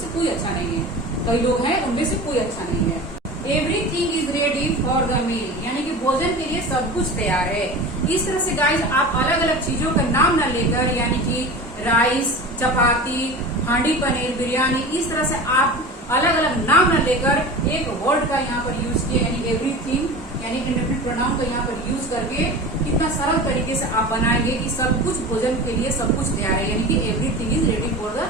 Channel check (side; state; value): both; normal; correlation 0.33